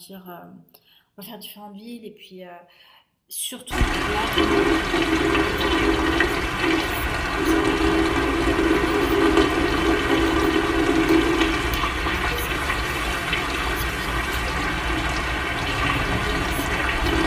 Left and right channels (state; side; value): identical; both; correlation 1.00